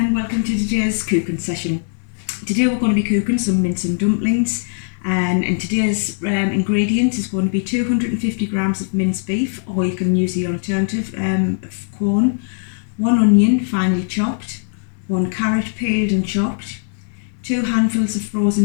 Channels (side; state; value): right; silent; 66 dB below the other